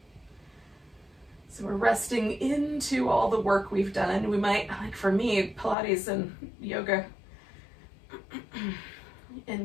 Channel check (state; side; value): drops out; right; at 5.8 s